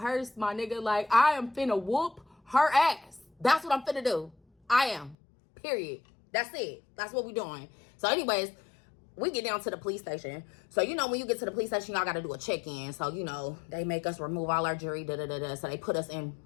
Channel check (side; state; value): right; drops out; at 5.2 s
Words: my nigga. Like, I am finna whoop her ass. That's what I'm finna do. I am. Period. That's it. That's what we doing. So anyways, we get down to the police station. So, you know, when you get to the police station, y'all got to do a check-in. So, you know, they make us remove all our jewelry, So they put us in